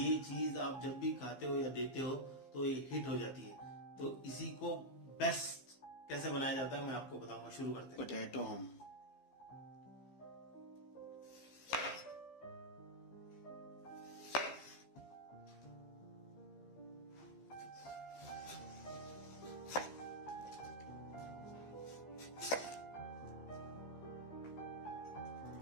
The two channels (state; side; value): late; right; 15 ms